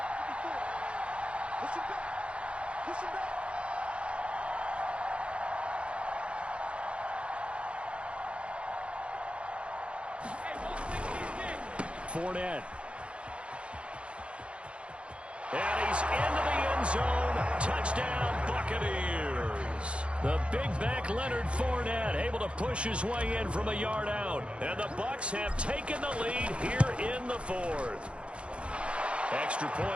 Fournette. And he's into the end zone. Touchdown, Buccaneers. The big back Leonard Fournette able to push his way in from a yard out. And the Bucs have taken the lead here in the 4th. Extra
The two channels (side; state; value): left; late; 0.060 ms